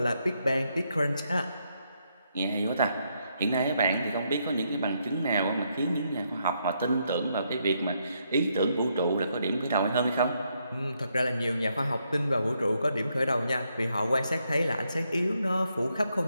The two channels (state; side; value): inverted; both; correlation -0.77